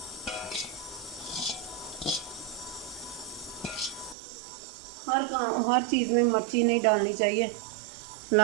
हर चीज़ में मिर्ची नहीं डालनी चाहिए,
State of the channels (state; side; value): drops out; left; at 4.2 s